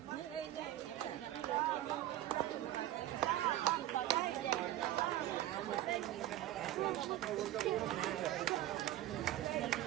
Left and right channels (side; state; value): left; quieter; 13.9 dB